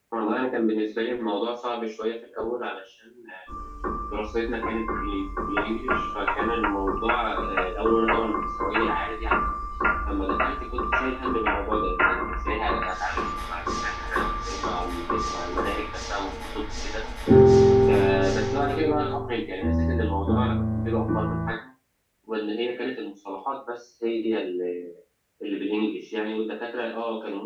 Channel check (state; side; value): identical; both; correlation 1.00